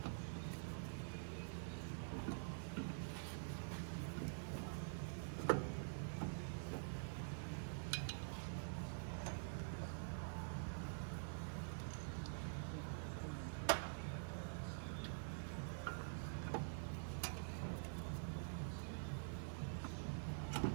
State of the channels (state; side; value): silent; left; digital silence